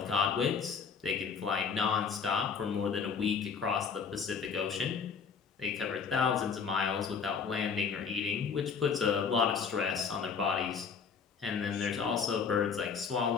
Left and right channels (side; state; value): right; quieter; 6.0 dB